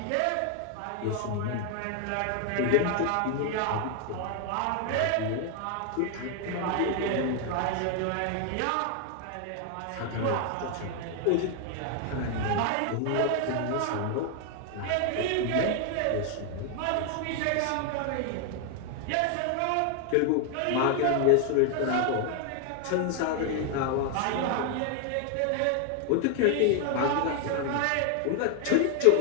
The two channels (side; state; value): both; different; correlation 0.00